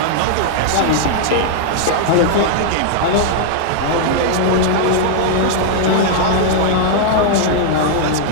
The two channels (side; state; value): both; different; correlation -0.01